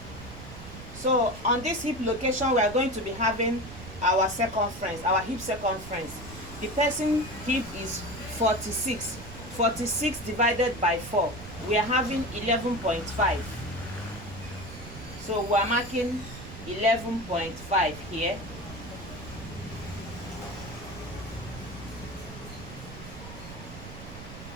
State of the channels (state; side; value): noise; right; rumble, 13 dB below the sound